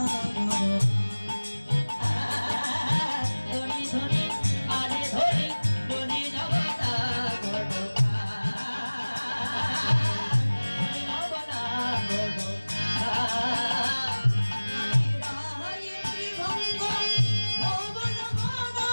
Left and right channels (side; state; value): both; inverted; correlation -1.00